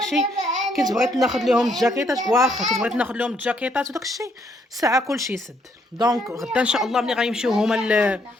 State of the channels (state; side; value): normal; both; correlation 0.71